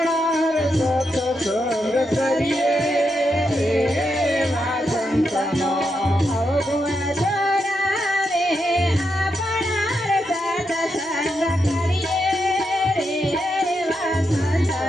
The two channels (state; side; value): normal; both; correlation 0.84